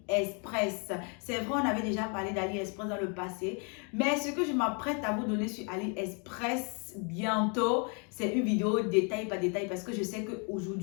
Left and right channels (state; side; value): quieter; right; 36.7 dB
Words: C'est vrai, on avait déjà parlé d'AliExpress dans le passé, mais ce que je m'apprête à vous donner sur AliExpress bientôt, c'est une vidéo détail par détail parce que je sais